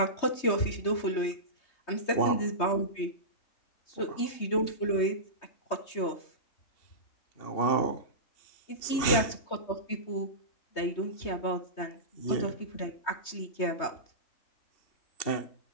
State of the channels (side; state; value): right; late; 3.2 ms